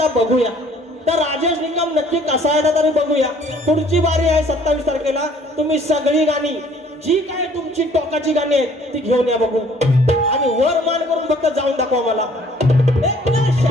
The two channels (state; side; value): normal; both; correlation 0.57